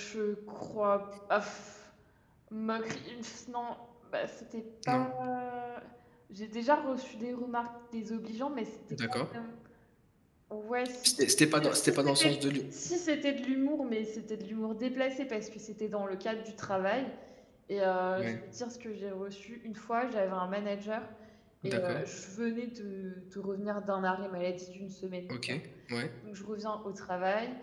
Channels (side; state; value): both; identical; correlation 1.00